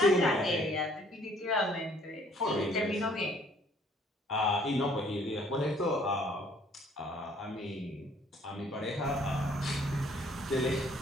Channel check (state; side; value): normal; both; correlation 0.60